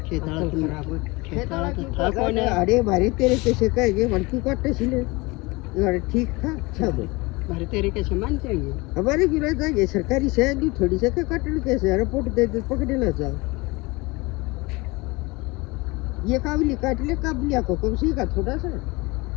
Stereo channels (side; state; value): right; quieter; 24.1 dB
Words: खेताला था कौन है अरे भारी तेरे कैसे कहेंगे वरकू काटते सिले अरे ठीक था सब भारी तेरे कैसे मान चाहिए हमारे की रहता है सरकारी से दू थोड़ी से का काटल कैसे रिपोर्ट दे दे पकड़े ना जाओ ये काबिल काट ले काबिलिया को कम से का थोड़ा सा